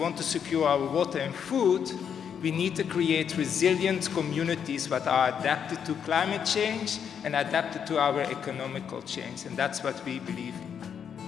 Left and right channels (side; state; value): right; quieter; 7.8 dB